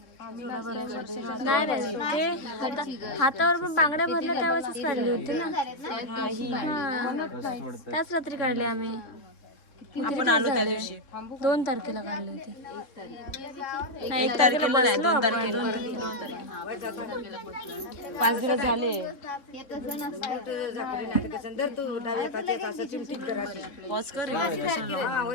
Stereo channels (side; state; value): right; late; 3.7 ms